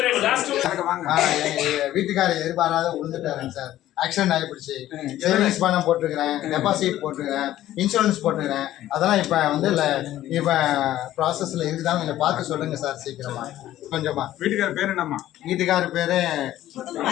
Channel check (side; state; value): right; quieter; 13.6 dB